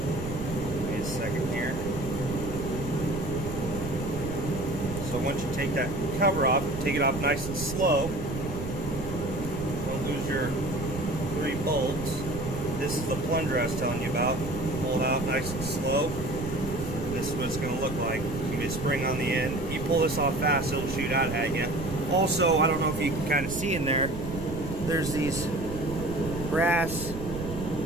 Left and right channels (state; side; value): noise; right; rumble, 8 dB below the sound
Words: Wait a second here. So once you take that cover off, take it off nice and slow. Don't lose your 3 bolts. This is the plunger I was telling you about. Pull it out nice and slow. This is what it's going to look like. You get a spring on the end. You pull this off fast, it'll shoot out at you. Also, I don't know if you can kind of see in there, there's these brass